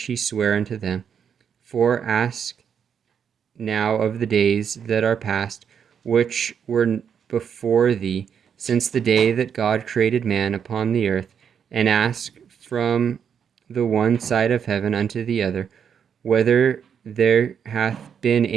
he sware unto them. For ask now of the days that are past, which were before thee, since the day that God created man upon the earth, and ask from the one side of heaven unto the other, whether there hath been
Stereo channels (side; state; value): left; quieter; 7.6 dB